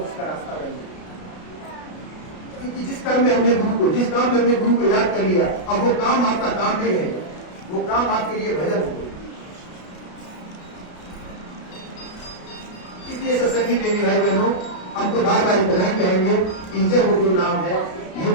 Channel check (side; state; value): right; late; 33 ms